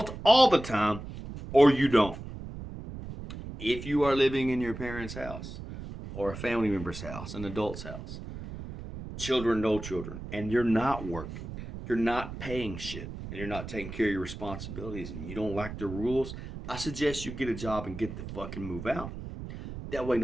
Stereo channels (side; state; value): right; noise; rumble, 10 dB below the sound